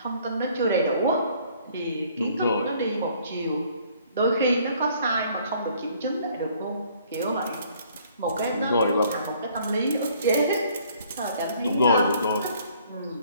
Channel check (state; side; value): inverted; both; correlation -0.60